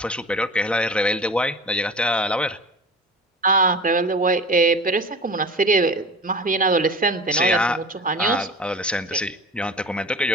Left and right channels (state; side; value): normal; both; correlation 0.37